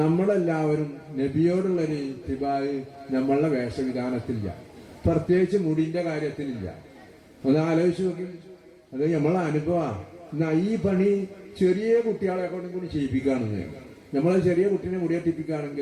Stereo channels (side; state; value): both; identical; correlation 1.00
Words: നബിയോടുള്ളൊരു തിബായ് നമ്മളുടെ വേഷവിധാനത്തിലില്ല, പ്രത്യേകിച്ച് മുടിന്റെ കാര്യത്തിലില്ല. ഒന്ന് ആലോചിച്ച് നോക്കി. അത് നമ്മളെ അനുഭവമാണ്. എന്നാ ഈ പണി ചെറിയ കുട്ടികളെ കൊണ്ടും കൂടി ചെയ്യിപ്പിക്കുകയാണെന്ന്. നമ്മളെ ചെറിയ കുട്ടീനെ